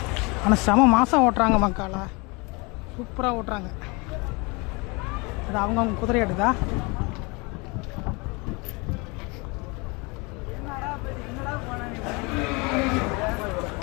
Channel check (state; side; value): quieter; right; 28.2 dB